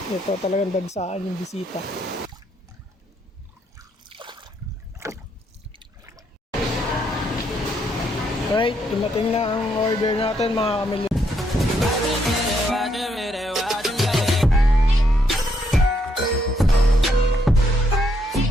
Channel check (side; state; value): both; normal; correlation 0.74